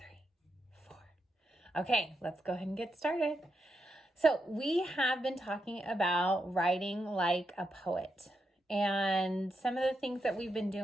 4. Okay, let's go ahead and get started. So we have been talking about writing like a poet. And some of the things that we've been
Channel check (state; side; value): normal; both; correlation 0.84